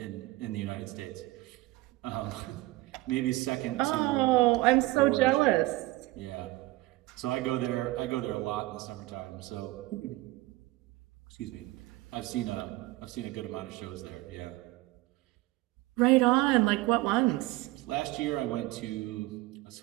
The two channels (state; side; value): quieter; left; 19.6 dB